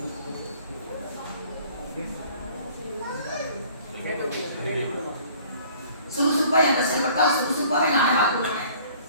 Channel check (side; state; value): both; inverted; correlation -0.53